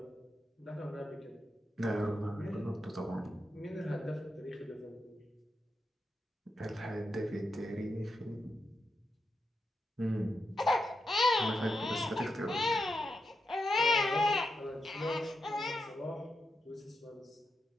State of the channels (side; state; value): both; normal; correlation 0.86